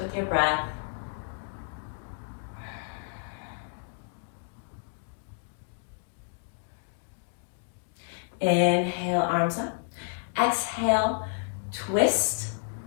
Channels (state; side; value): silent; right; digital silence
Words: your breath. Inhale, arms up. Exhale, twist